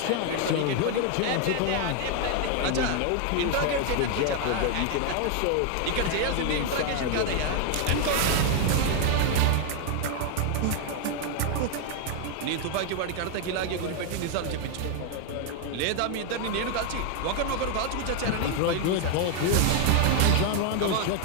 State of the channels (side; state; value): both; different; correlation 0.00